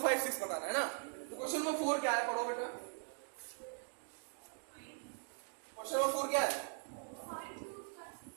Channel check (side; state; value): left; silent; 51 dB below the other